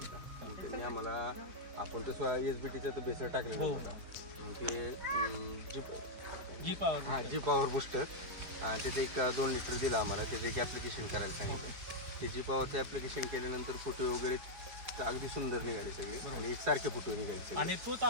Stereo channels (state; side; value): late; left; 4.8 ms